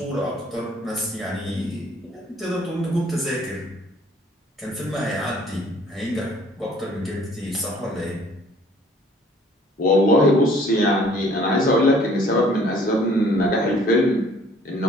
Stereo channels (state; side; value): normal; both; correlation 0.57